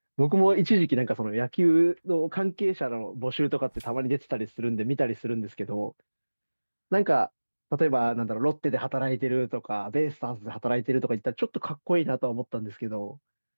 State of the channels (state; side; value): inverted; both; correlation -1.00